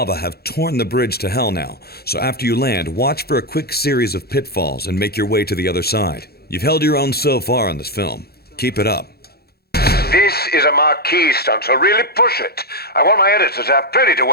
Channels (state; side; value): late; right; 0.46 ms